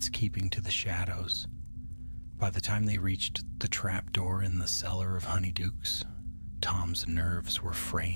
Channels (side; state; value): both; inverted; correlation -1.00